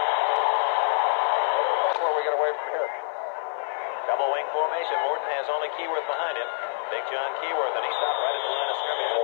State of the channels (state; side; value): silent; right; digital silence